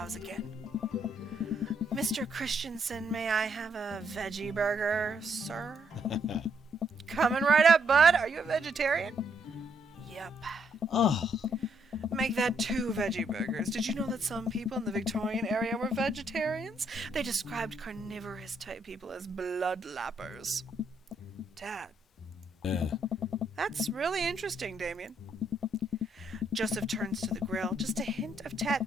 again. Mr. Christensen, may I have a veggie burger, sir? Coming right up, bud. Are you a vegetarian? Yep. Oh, Make that 2 veggie burgers. Did you know that some people in the Victorian area were vegetarians? They described carnivorous type people as bloodlappers. Dad. That's really interesting, Damien. Joseph turns to the grill. Just a hint of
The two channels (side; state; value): both; normal; correlation 0.73